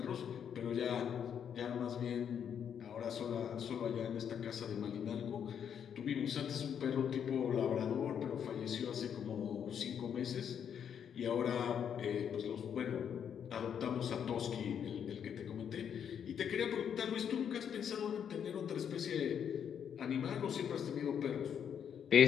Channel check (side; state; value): right; quieter; 8.3 dB